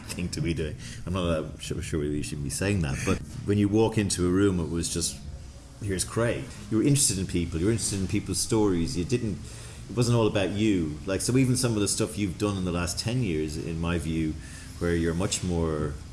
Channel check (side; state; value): both; identical; correlation 1.00